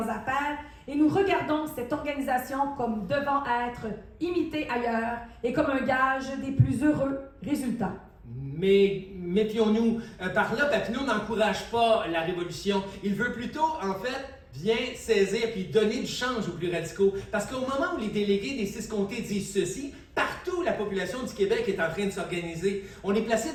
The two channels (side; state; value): both; identical; correlation 1.00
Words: affaires et nous regardons cette organisation comme devant être imitée ailleurs et comme un gage des plus heureux résultats. Mais méfions-nous, par là, Papineau n'encourage pas la révolution. Il veut plutôt, en fait, bien saisir puis donner du change aux plus radicaux. Parce qu'au moment où les délégués des 6 comtés disent ceci, partout la population du Québec est en train de s'organiser. On est placé